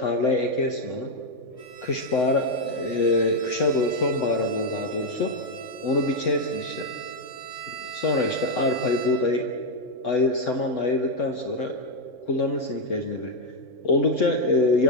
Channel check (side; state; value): right; late; 3.6 ms